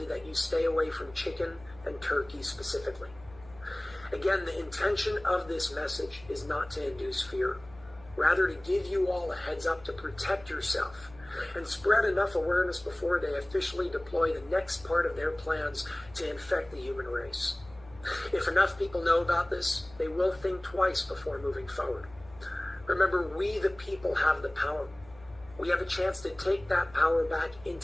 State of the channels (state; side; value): noise; left; hum, 23 dB below the sound